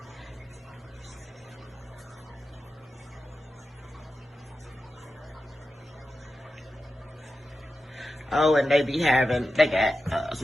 Oh, and they got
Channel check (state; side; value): normal; both; correlation 0.91